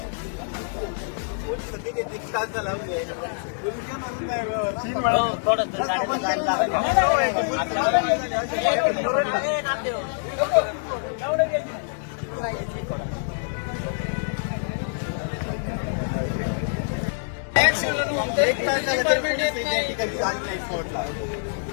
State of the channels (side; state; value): right; silent; digital silence